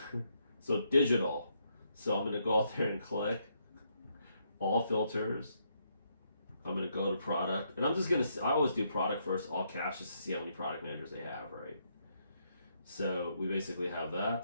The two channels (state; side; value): inverted; both; correlation -0.76